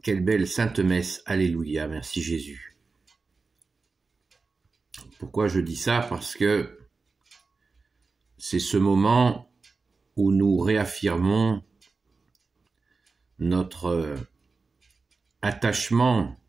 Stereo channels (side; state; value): left; quieter; 4.2 dB